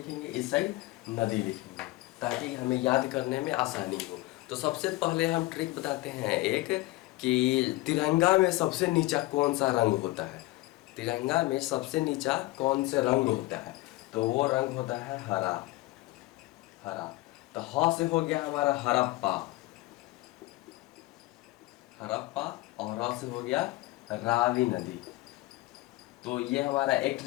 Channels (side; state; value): right; quieter; 19.8 dB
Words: इस साइड नदी लिखेंगे, ताकि हमें याद करने में आसानी हो। तो सबसे पहले हम ट्रिक बताते हैं एक, कि तिरंगा में सबसे नीचा कौन सा रंग होता है। तिरंगा में सबसे नीचा कौन से रंग होता है, तो वो रंग होता है हरा। हरा। तो ह से हो गया हमारा हड़प्पा, हड़प्पा, और र से हो गया रावी नदी। तो ये हमारा एक